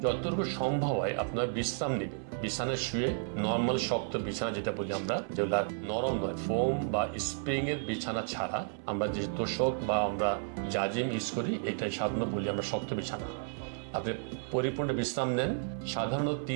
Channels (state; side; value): silent; left; 56 dB below the other